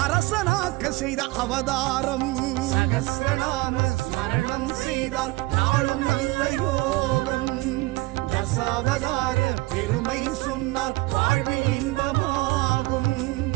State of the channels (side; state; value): left; quieter; 21.1 dB